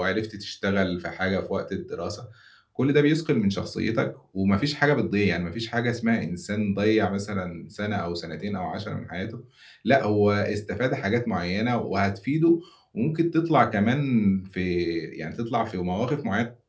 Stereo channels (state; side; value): identical; both; correlation 1.00